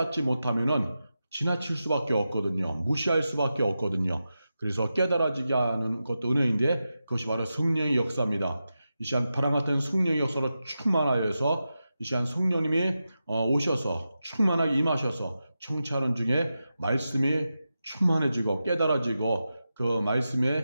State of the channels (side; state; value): both; inverted; correlation -0.91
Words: 못하면은 지나칠 수밖에 없거든요. 무시할 수밖에 없거든요. 그래서 깨달아지게 하는 것도 은혜인데 그것이 바로 성령의 역사입니다. 이 시간 바람 같은 성령의 역사로 충만하여서 이 시간 성령님이 오셔서 충만하게 임하셔서 청취하는 중에 말씀이 충만해지고 깨달아지고 그